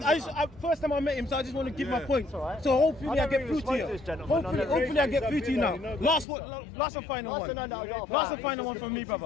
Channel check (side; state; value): right; drops out; at 6.2 s